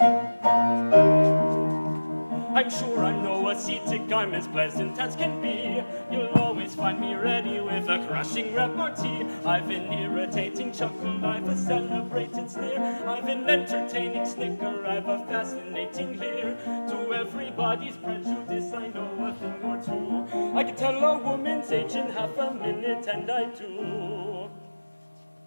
I'm sure I'm no ascetic, I'm as pleasant as can be. You'll always find me ready with a crushing repartee. I've an irritating chuckle, I've a celebrated sneer. I've an entertaining snicker, I've a fascinating leer. To everybody's prejudice, I know a thing or two. I can tell a woman's age in half a minute, and I do.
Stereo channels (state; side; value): inverted; both; correlation -1.00